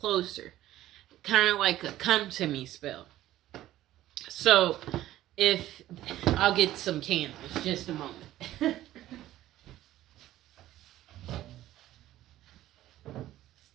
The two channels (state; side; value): quieter; left; 14.2 dB